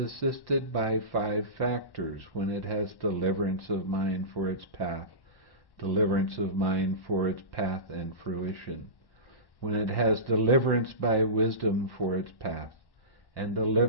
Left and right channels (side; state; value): right; late; 1.1 ms